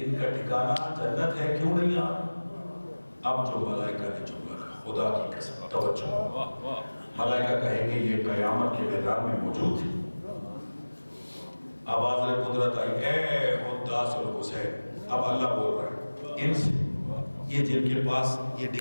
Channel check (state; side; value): inverted; both; correlation -1.00